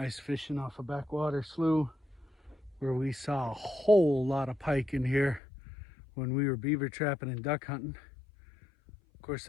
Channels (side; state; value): right; drops out; at 5.4 s